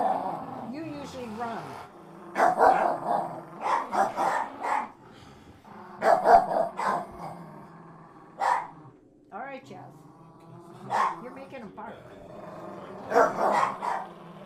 You usually run. All right, Jazz. You're making him bark.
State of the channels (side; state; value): both; identical; correlation 1.00